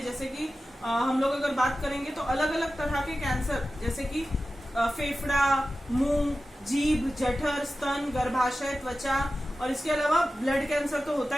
जैसे कि हम लोग अगर बात करेंगे तो अलग अलग तरह के कैंसर, जैसे कि फेफड़ा, मुंह, जीभ, जठर, स्तन, गर्भाशय, त्वचा, और इसके अलावा ब्लड कैंसर तो होता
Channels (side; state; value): both; normal; correlation 0.94